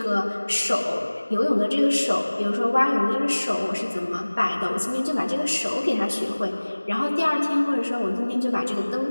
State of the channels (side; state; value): both; inverted; correlation -1.00